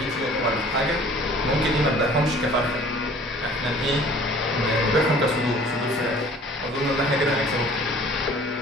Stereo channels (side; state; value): both; normal; correlation 0.51